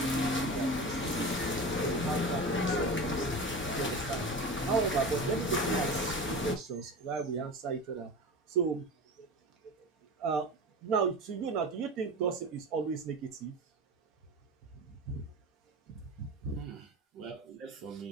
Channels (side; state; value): both; normal; correlation 0.30